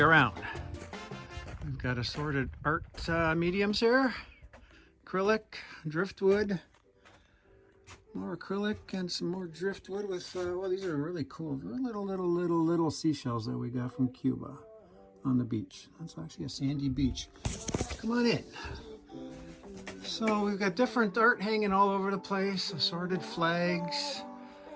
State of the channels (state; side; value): identical; both; correlation 1.00